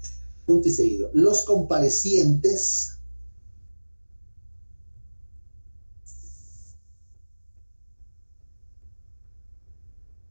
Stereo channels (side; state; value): both; inverted; correlation -1.00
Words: Punto y seguido. Los comparecientes